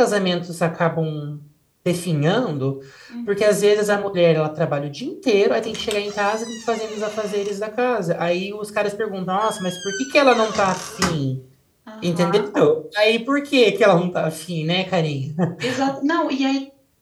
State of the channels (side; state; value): both; identical; correlation 1.00